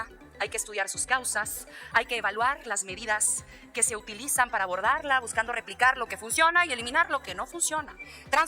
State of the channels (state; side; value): identical; both; correlation 1.00